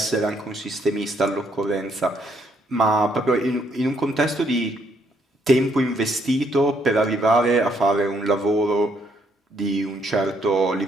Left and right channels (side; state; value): both; normal; correlation 0.71